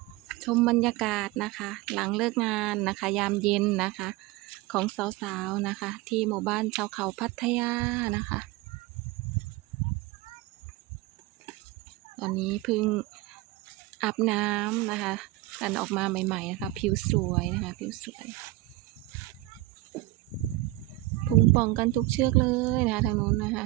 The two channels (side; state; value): left; quieter; 18.0 dB